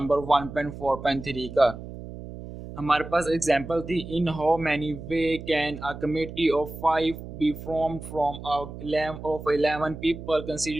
1.4.3 का। हमारे पास एग्जांपल थी, in how many way can a committee of 5 be formed from of 11 people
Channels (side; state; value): right; noise; hum, 12 dB below the sound